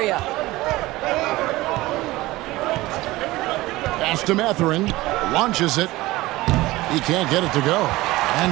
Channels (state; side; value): quieter; left; 18.9 dB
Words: Pass to Mathurin. Launches it. He can't get it to go.